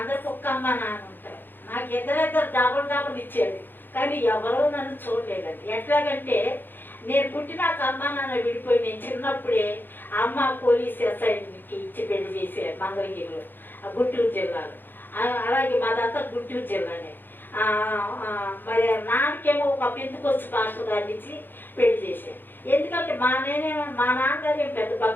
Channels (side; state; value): right; late; 0.094 ms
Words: ఒక్క అమ్మ నాన్న ఉంటారు. నాకు ఇద్దరు డబుల్ ఇచ్చేది, కానీ ఎవరో నన్ను చూడలేదండి. ఎట్లాగంటే నేను పుట్టినాక అమ్మ నాన్న విడిపోయి, నేను చిన్నప్పుడే అమ్మ పోలీస్ ఎస్ఐకి ఇచ్చి పెళ్లి చేశారు మంగళగిరిలో, గుంటూరు జిల్లాలో. అలాగే మాదంతా గుంటూరు జిల్లానే. మరి నాన్నకేమో ఒక పెంతుకొచ్చి పాస్టర్ గారిని ఇచ్చి పెళ్లి చేశారు. ఎందుకంటే మా నాన్నగారు ఏం పెద్ద